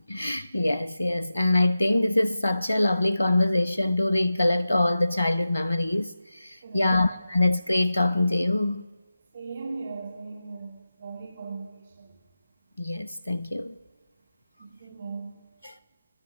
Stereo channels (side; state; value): both; inverted; correlation -0.93